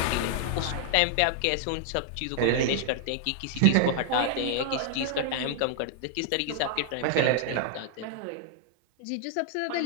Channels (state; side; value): different; both; correlation -0.01